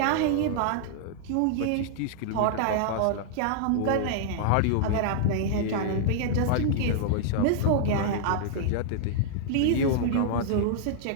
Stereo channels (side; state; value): both; different; correlation -0.01